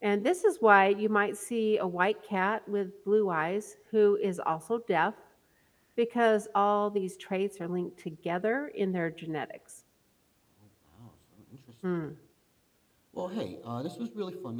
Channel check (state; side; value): identical; both; correlation 1.00